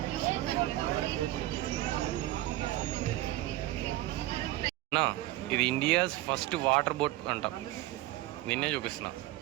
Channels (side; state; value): left; quieter; 16.5 dB